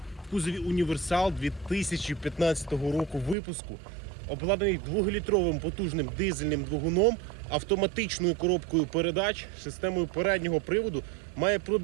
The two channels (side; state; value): left; drops out; at 3.4 s